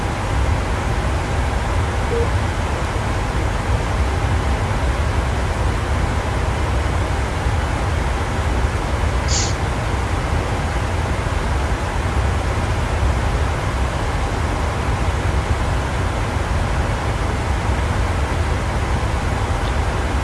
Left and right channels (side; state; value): both; identical; correlation 1.00